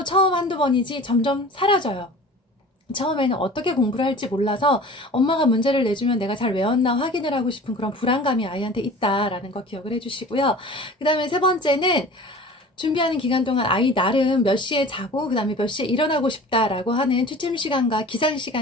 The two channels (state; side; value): normal; both; correlation 0.41